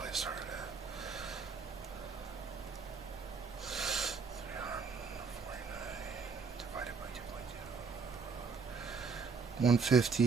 I started at? 349 divided by 2.2.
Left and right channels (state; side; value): quieter; left; 5.2 dB